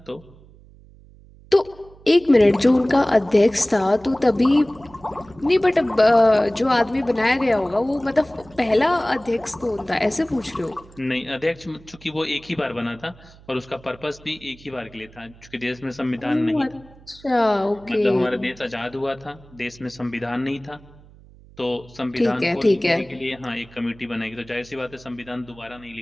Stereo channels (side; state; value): right; noise; hum, 24 dB below the sound